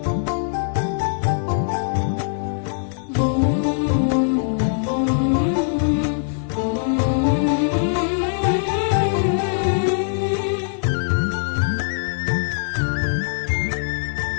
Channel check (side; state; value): right; silent; 57 dB below the other